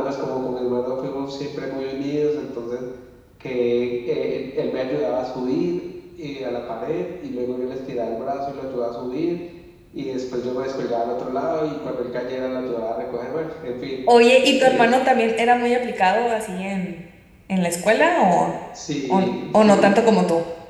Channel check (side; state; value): both; identical; correlation 1.00